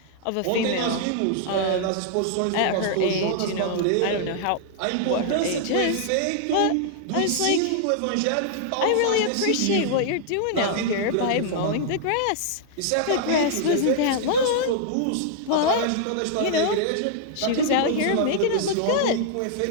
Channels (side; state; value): both; different; correlation -0.01